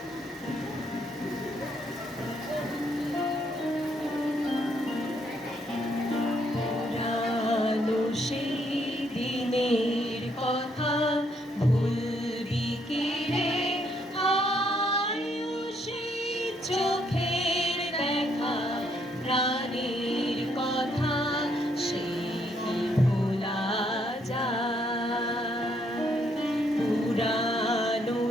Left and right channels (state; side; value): normal; both; correlation 0.72